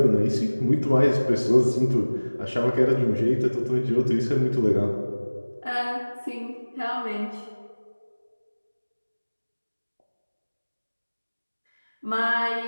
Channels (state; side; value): inverted; both; correlation -1.00